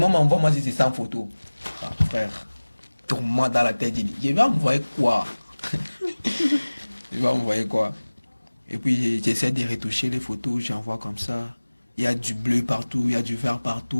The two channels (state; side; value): inverted; both; correlation -1.00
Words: envoie-moi si c'est 100 photos. Ah, frère, tourne-moi dans la tête. Je vais envoyer quoi? Je vais envoyer quoi? Et puis j'essaie de retoucher les photos, j'envoie comme ça. Il y a du bleu partout, il y a du vert